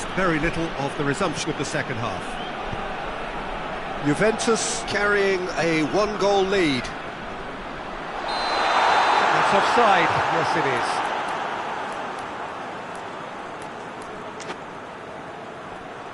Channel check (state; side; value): identical; both; correlation 1.00